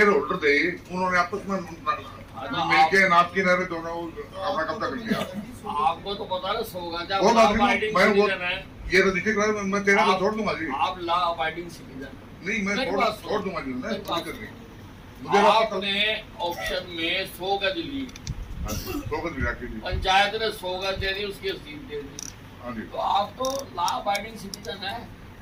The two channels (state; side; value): identical; both; correlation 1.00